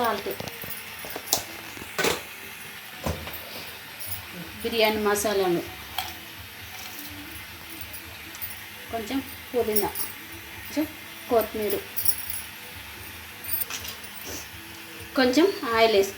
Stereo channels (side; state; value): both; identical; correlation 1.00